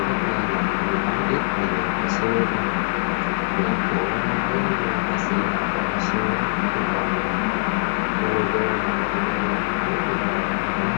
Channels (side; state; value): right; silent; digital silence